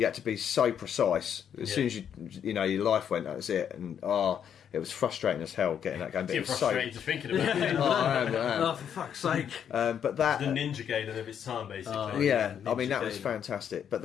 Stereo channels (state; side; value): quieter; right; 8.6 dB